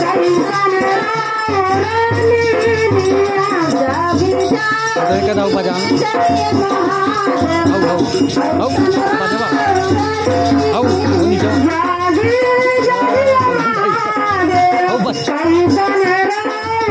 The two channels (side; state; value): both; identical; correlation 1.00